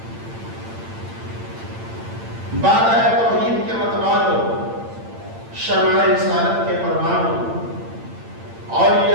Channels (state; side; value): late; left; 8.8 ms